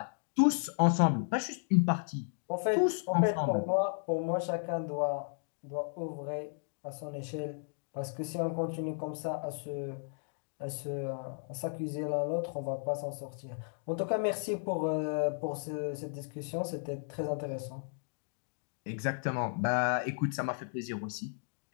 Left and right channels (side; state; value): right; silent; digital silence